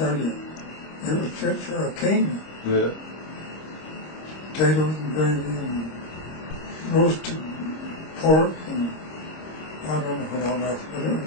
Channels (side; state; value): right; late; 26 ms